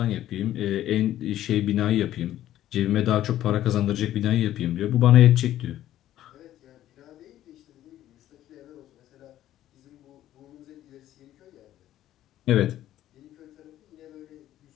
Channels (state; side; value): quieter; right; 12.9 dB